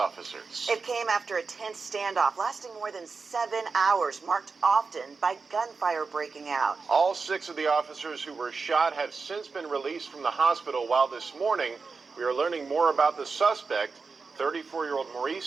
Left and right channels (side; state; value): left; quieter; 4.6 dB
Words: It came after a tense standoff lasting more than 7 hours, marked often by gunfire breaking out. All 6 of the officers who were shot have since been released from the hospital, while this morning we are learning more about the suspect, 34-year-old